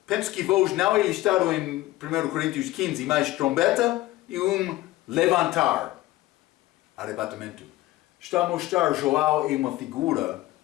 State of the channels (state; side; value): quieter; right; 17.0 dB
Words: penso que voz não é listado em 1 Coríntios 15, mas trombeta e levantar, arrebatamento. Está a mostrar Joel é uma figura